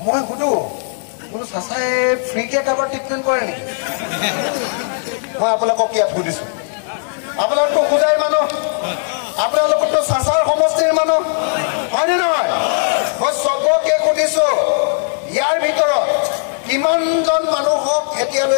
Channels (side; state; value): right; silent; digital silence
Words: মই সুধো বোলো চাচাই ফ্ৰীকে কাৰোবাৰ ট্ৰিটমেণ্ট কৰে নেকি মই আপোনালোকক ইয়াত সুধিছো আপোনালোকতো খুদাই মানুহ আপোনালোকতো চাচাৰ সমষ্টিৰ মানুহ হয়নে নহয় মই চবকে সুধিছো ইয়াৰ ভিতৰত কিমানজন মানুহক